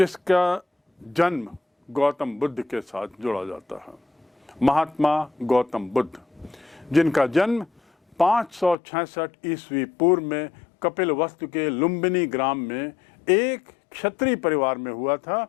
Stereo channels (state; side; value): drops out; right; at 8.8 s